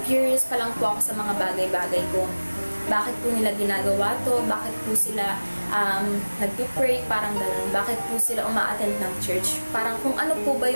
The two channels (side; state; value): both; inverted; correlation -1.00